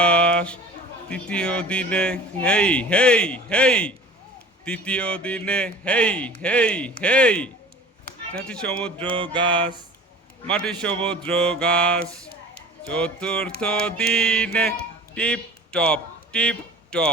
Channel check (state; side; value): normal; both; correlation 0.42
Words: তৃতীয় দিনে হেই হেই হেই। তৃতীয় দিনে হেই হেই হেই। মাটি সমুদ্র গাছ, মাটি সমুদ্র গাছ। চতুর্থ দিনে tip top tip